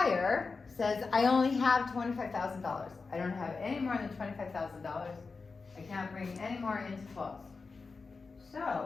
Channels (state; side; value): quieter; right; 4.4 dB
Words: says, I only have $25,000. I don't have any more than $25,000. I can't bring any more in to close.